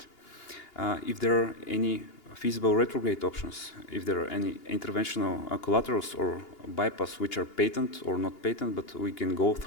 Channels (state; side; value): late; right; 2.8 ms